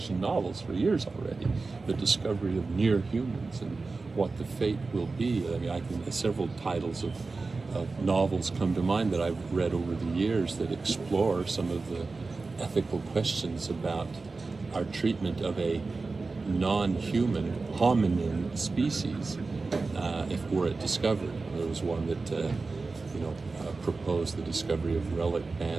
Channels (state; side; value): quieter; left; 3.9 dB